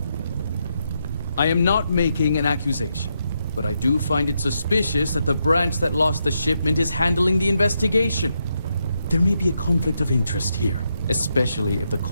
I am not making an accusation, but I do find it suspicious that the branch that lost the shipment is handling the investigation. There may be a conflict of interest here, especially if the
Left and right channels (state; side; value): inverted; both; correlation -0.81